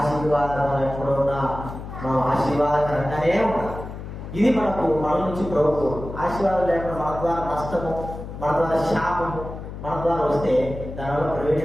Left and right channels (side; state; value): left; noise; hum, 10 dB below the sound